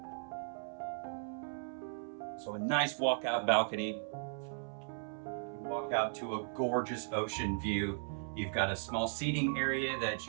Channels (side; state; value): left; silent; 53 dB below the other